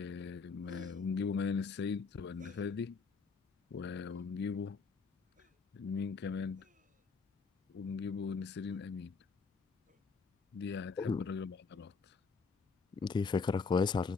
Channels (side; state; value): right; quieter; 4.9 dB